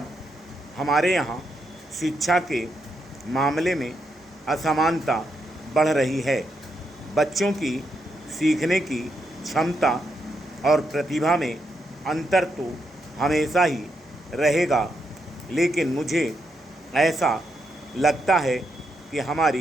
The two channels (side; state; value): both; normal; correlation 0.81